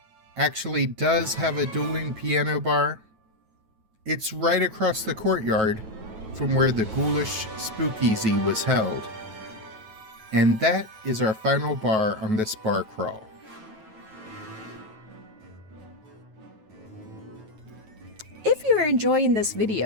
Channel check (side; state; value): left; late; 9.2 ms